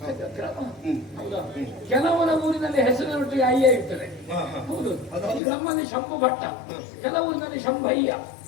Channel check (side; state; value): right; drops out; at 5.4 s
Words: ಹೌದಾ? ಕೆಲವರ ಊರಿನಲ್ಲಿ ಹೆಸರಿನೊಟ್ಟಿಗೆ ಅಯ್ಯ ಇರ್ತದೆ. ಹೌದು, ನಮ್ಮಲ್ಲಿ ಶಂಭು ಭಟ್ಟ, ಕೆಲವೂರಿನಲ್ಲಿ ಶಂಭಯ್ಯ.